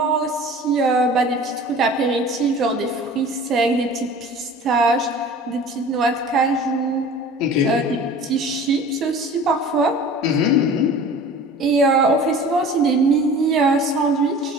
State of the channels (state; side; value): normal; both; correlation 0.42